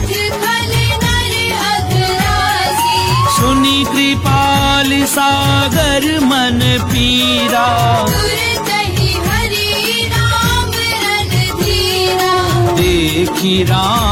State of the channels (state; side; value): identical; both; correlation 1.00